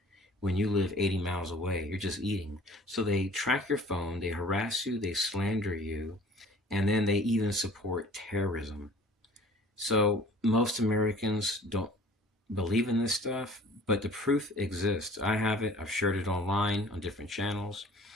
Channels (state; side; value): normal; both; correlation 0.49